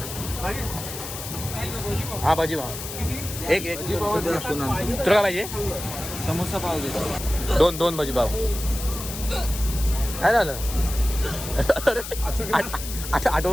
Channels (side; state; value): left; noise; hiss, 9 dB below the sound